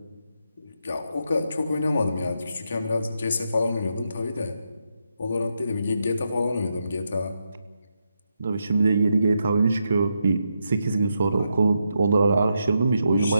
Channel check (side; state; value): both; inverted; correlation -0.83